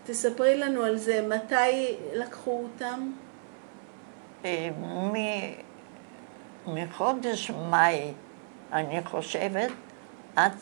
תספרי לנו על זה, מתי לקחו אותם? מחודש מאי, אני חושבת, עד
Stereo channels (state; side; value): silent; left; 57 dB below the other